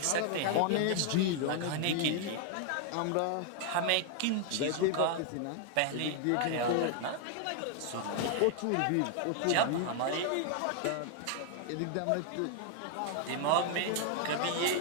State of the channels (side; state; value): both; different; correlation 0.00